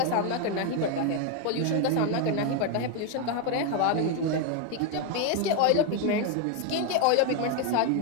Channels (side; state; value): both; different; correlation 0.01